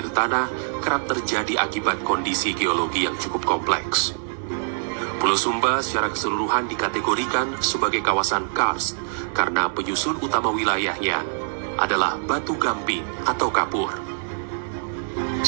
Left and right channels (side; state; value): left; silent; 63 dB below the other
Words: tanah kerap terjadi akibat kondisi geologi yang cukup kompleks. Pulau Sumba secara keseluruhan dikategorikan sebagai kawasan karst karena penyusun utama wilayahnya adalah batu gamping atau kapur.